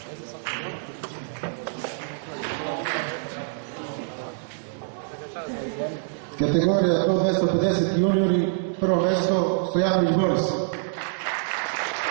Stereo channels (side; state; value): left; silent; digital silence